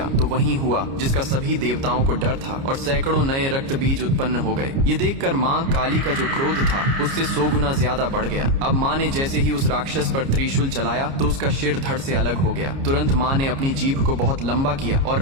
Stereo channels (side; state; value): left; late; 29 ms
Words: तो वही हुआ जिसका सभी देवताओं को डर था और सैकड़ों नए रक्त बीज उत्पन्न हो गए। ये देखकर माँ काली का जो क्रोध था उससे 100 गुना ज्यादा बढ़ गया। अब माँ ने जैसे ही उस राक्षस पर त्रिशूल चलाया तो उसका सिर धड़ से अलग हो गया। तुरंत माँ ने अपनी जीभ को बहुत लंबा किया